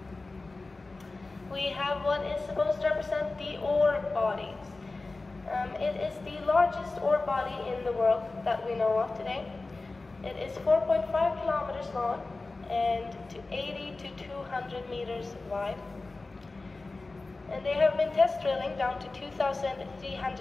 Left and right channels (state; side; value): quieter; right; 3.4 dB